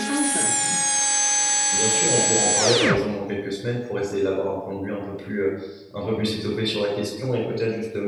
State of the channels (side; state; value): both; identical; correlation 1.00